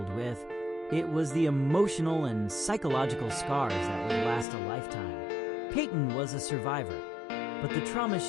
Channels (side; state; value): right; drops out; at 4.5 s